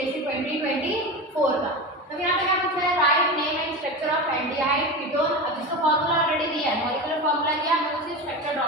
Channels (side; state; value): both; normal; correlation 0.24